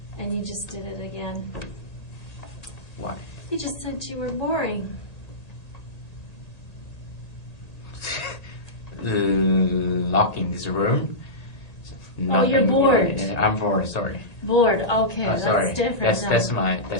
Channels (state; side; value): late; right; 1.9 ms